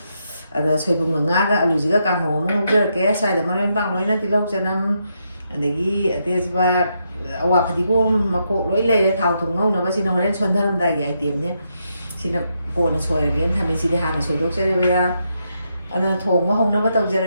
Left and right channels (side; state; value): both; inverted; correlation -0.80